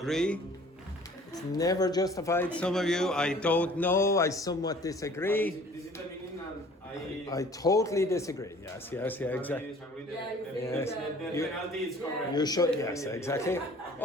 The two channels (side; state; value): both; normal; correlation 0.51